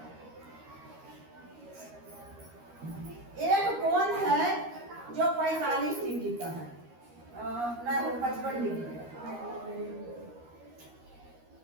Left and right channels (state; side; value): late; left; 13 ms